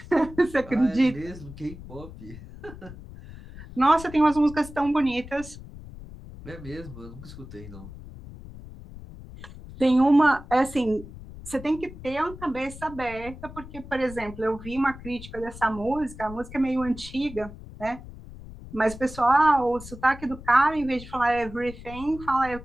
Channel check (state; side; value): noise; left; rumble, 15 dB below the sound